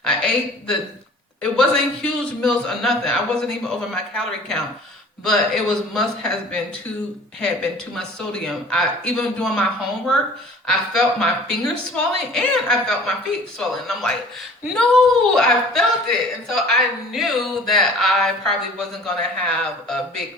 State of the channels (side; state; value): both; normal; correlation 0.48